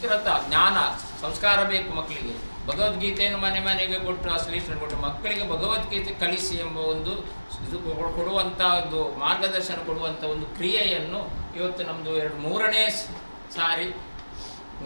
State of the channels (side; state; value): both; inverted; correlation -1.00